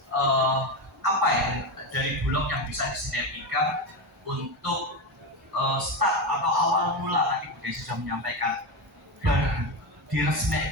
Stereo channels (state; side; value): normal; both; correlation 0.15